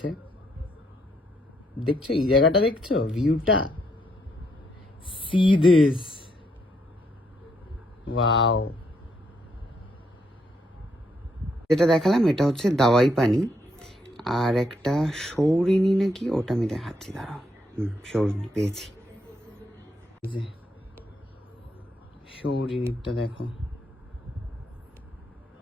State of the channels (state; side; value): normal; both; correlation 0.74